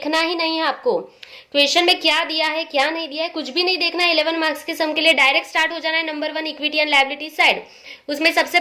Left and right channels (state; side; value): identical; both; correlation 1.00